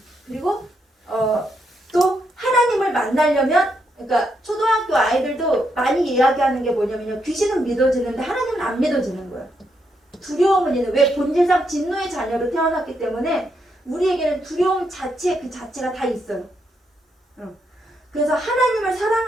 그리고 또 하나님을 만나려면 그러니까 초등학교 아이들도 많이 이야기하는 게 뭐냐면요. 귀신은 믿어지는데 하나님은 안 믿어지는 거예요. 두려움은 있는 왜 본질상 진노의 자녀로 태어났기 때문에 우리에게는 두려움 자체 그 자체가 다 있어요. 그래서 하나님을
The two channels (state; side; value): normal; both; correlation 0.79